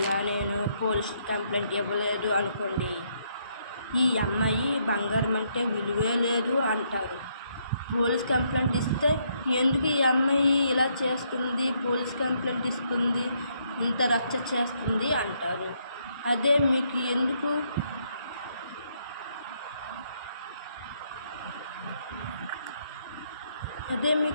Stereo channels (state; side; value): inverted; both; correlation -0.73